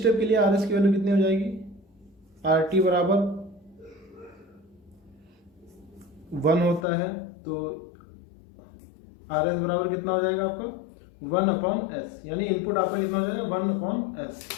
के लिए आर एस की वैल्यू कितनी हो जाएगी, आर टी बराबर 1 होता है, तो आर एस बराबर कितना हो जाएगा आपका 1/s, यानी इनपुट आपका कितना हो जाएगा 1/s।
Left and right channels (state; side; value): drops out; right; at 6.9 s